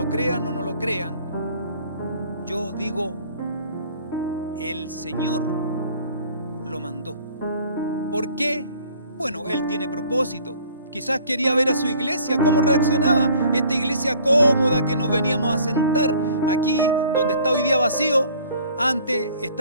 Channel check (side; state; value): both; inverted; correlation -0.54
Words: crean o no lo crean, yo digo, el Señor lo mandó. ¿Por qué? Bueno, Él tiene propósito. Quizás quería ver a su iglesia, cómo reaccionaba. Esta iglesia cómoda que nos veníamos a sentar aquí, donde está hoy día vacío, antes